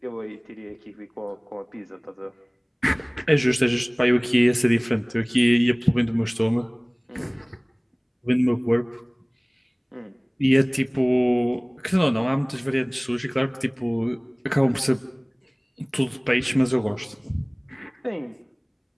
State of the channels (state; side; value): identical; both; correlation 1.00